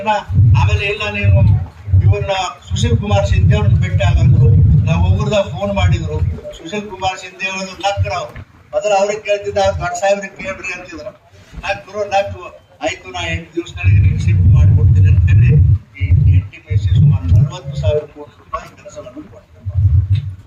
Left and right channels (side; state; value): both; identical; correlation 1.00